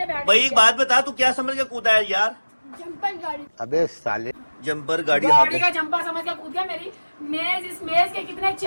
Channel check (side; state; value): both; inverted; correlation -1.00